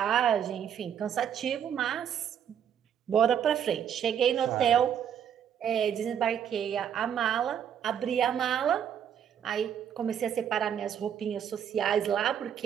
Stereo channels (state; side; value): quieter; left; 8.8 dB